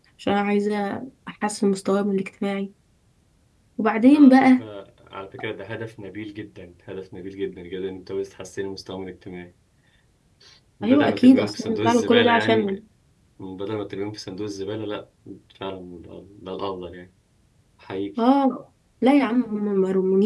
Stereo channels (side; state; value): both; identical; correlation 1.00